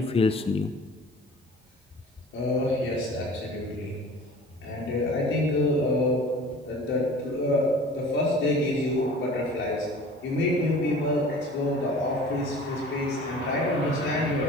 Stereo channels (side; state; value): both; normal; correlation 0.43